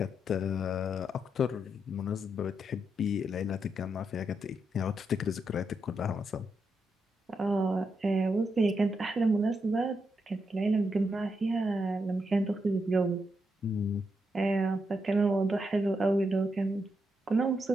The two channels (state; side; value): normal; both; correlation 0.82